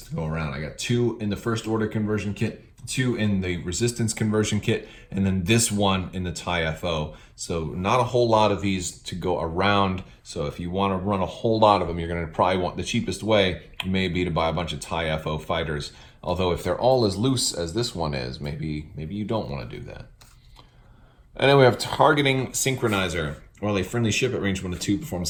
go around. I got 2 in the First Order conversion kit, 2 in the Resistance conversion kit, and then this one in the TIE FO. So not a whole lot of these to go around. So if you want to run a whole lot of them, you're going to probably want the cheapest way may be to buy a bunch of TIE FO fighters. Although if they're all as loose as this one is, maybe you don't want to do that. And then we have Targeting Synchronizer. While a friendly ship at range 1 to 2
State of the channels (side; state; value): both; identical; correlation 1.00